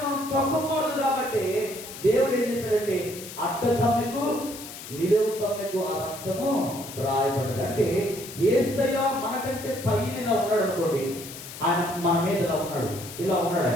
మనం తొక్కకూడదు కాబట్టి దేవుడు ఏం చేశాడంటే అడ్డ కమ్మెకు నిలువు కమ్మెకు ఆ రక్తము రాయబడదు. అంటే యేసయ్య మనకంటే పైన ఇలా ఉన్నాడు అనుకోండి, ఆయన మన మీద ఇలా ఉన్నాడు.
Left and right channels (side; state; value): left; noise; hiss, 12 dB below the sound